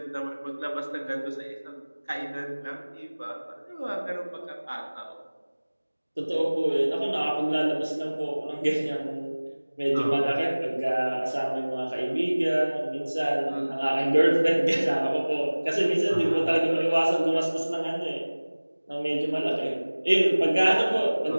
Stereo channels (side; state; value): both; inverted; correlation -1.00